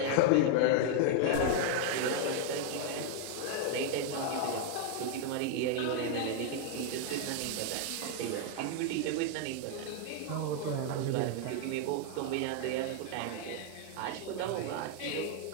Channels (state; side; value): different; both; correlation 0.00